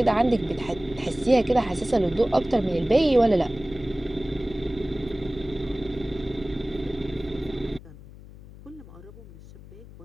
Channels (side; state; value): left; noise; hum, 18 dB below the sound